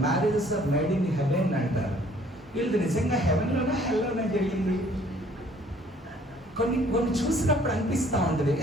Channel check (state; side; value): normal; both; correlation 0.58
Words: Marriages are made in heaven అంటారు. వీళ్ళు నిజంగా హెవెన్లోనే హెల్లోనే జరిగింది. కొన్ని చూసినప్పుడు అనిపిస్తూ ఉంటుంది